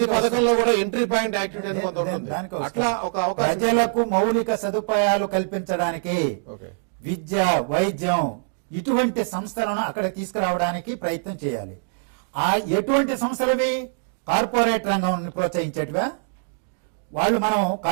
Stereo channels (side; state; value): left; silent; digital silence